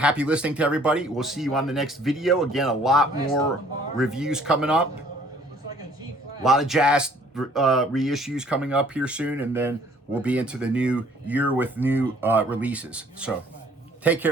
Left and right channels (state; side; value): normal; both; correlation 0.58